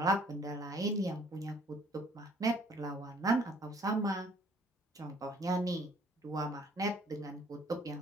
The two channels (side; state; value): both; normal; correlation 0.59